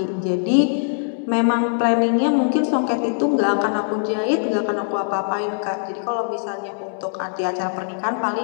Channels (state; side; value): silent; right; 64 dB below the other